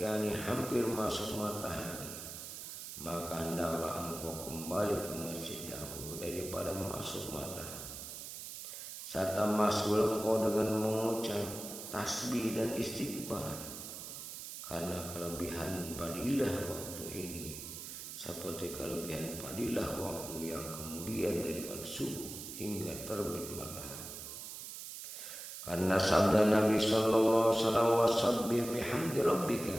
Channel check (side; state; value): right; noise; hiss, 9 dB below the sound